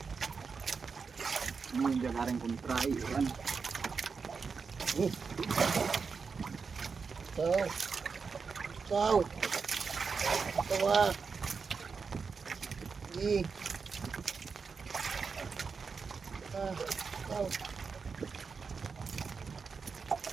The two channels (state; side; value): quieter; left; 5.2 dB